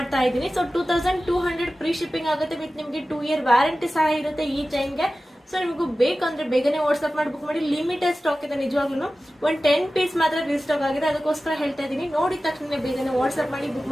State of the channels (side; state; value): both; normal; correlation 0.95